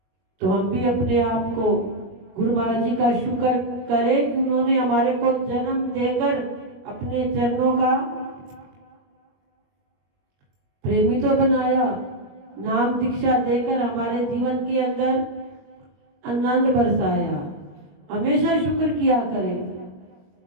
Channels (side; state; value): left; late; 21 ms